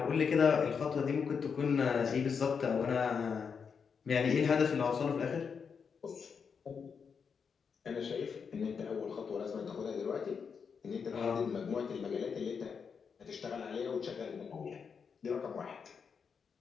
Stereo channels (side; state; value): right; quieter; 6.2 dB